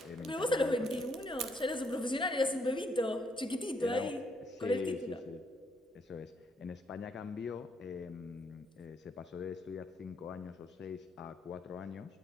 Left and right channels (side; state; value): both; normal; correlation 0.73